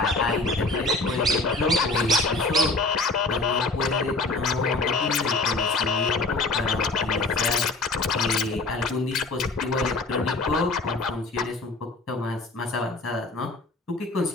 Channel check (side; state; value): right; quieter; 3.3 dB